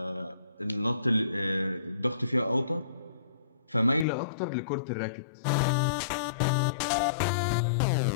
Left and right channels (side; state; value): right; drops out; at 4.0 s